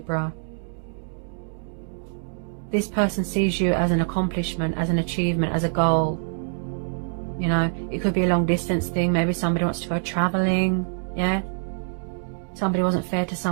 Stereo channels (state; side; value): silent; left; 62 dB below the other